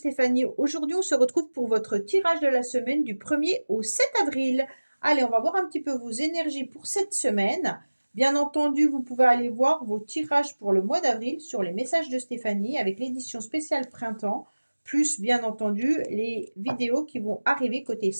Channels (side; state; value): both; inverted; correlation -1.00